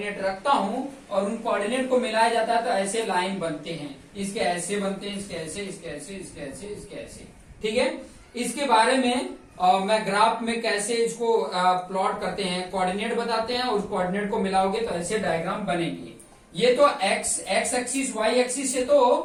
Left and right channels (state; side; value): identical; both; correlation 1.00